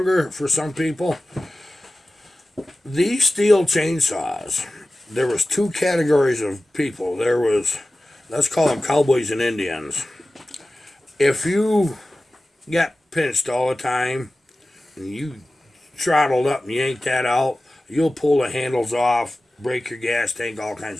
for some people. These steel chainsaws, there was two categories of people. There was, let's call them cowboys and Indians. If you got pinched all the time and you throttled up and yanked that out, you'll pull the handles off, break your gas tank, all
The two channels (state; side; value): normal; both; correlation 0.95